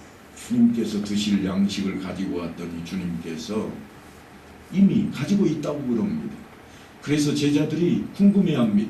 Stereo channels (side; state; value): both; identical; correlation 1.00